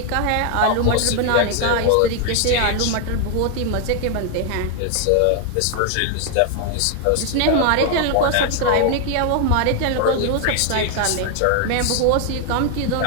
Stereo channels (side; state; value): both; different; correlation 0.00